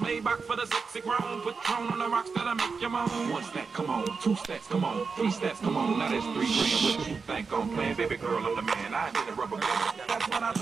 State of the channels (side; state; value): left; quieter; 5.0 dB